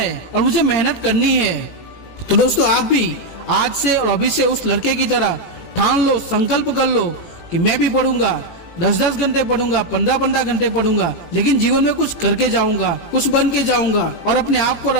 और मुझे मेहनत करनी है। तो दोस्तों आप भी आज से और अभी से उस लड़के की तरह ठान लो, संकल्प कर लो कि मैं भी पढ़ूंगा, 10-10 घंटे पढ़ूंगा, 15-15 घंटे पढ़ूंगा, लेकिन जीवन में कुछ करके जाऊंगा, कुछ बन के जाऊंगा और अपने आप को और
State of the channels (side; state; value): right; late; 18 ms